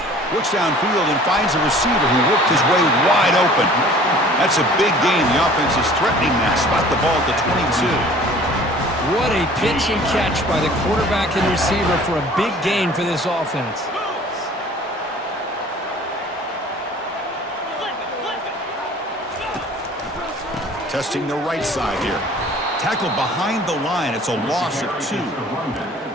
Looks downfield and finds a receiver who worked his way wide open. That's a big gain. The offense is threatening that. Spot the ball at the 22. What a pitch and catch by the quarterback and receiver for a big gain for this offense. Testing the right side here. Tackled behind the line. It's a loss of 2.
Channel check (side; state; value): both; normal; correlation 0.49